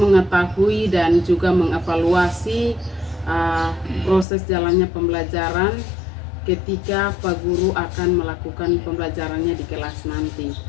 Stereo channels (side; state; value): right; drops out; at 4.2 s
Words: dan juga mengevaluasi proses jalannya pembelajaran ketika Pak Guru akan melakukan pembelajarannya di kelas nanti.